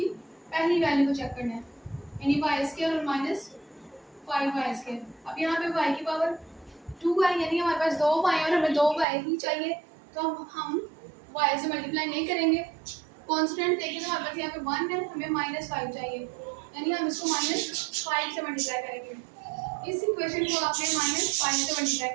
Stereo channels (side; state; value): left; drops out; at 9.1 s